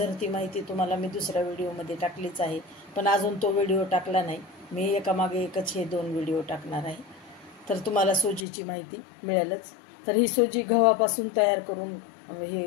माहिती तुम्हाला मी दुसऱ्या व्हिडिओमध्ये टाकलीच आहे, पण अजून तो व्हिडिओ टाकला नाही। मी एकामागे एकच हे दोन व्हिडिओ टाकणार आहे, तर तुम्हाला सोजीची माहिती मिळेलच। तर ही सोजी गव्हापासून तयार करून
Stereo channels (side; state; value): right; drops out; at 8.5 s